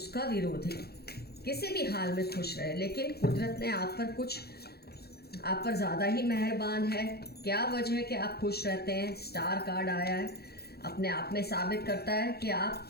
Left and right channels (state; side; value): late; right; 0.46 ms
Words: विरोधी किसी भी हाल में खुश रहे, लेकिन कुदरत ने आप पर ज़्यादा ही मेहरबान है। क्या वजह है कि आप खुश रहते हैं? स्टार कार्ड आया है, अपने आप में साबित करता है कि आप